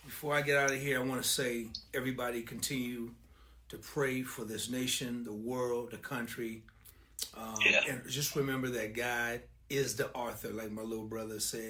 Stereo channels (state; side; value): identical; both; correlation 1.00